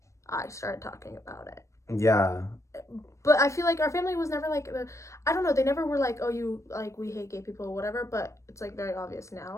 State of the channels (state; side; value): late; right; 0.15 ms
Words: I started talking about it. Yeah. But I feel like our family was never, like, I don't know, they never were like, oh, you, like, we hate gay people or whatever, but it's, like, very obvious